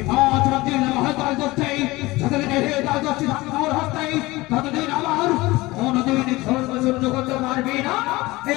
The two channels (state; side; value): quieter; right; 20.6 dB